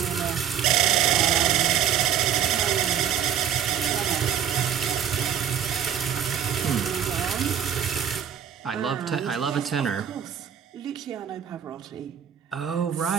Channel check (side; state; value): left; quieter; 8.9 dB